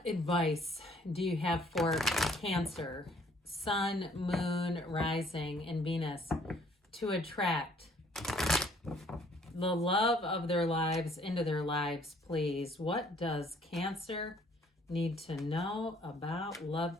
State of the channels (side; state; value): both; normal; correlation 0.61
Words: advice do you have for Cancer, Sun, Moon, Rising, and Venus to attract the love of their lives into their lives, please? What does Cancer need to know about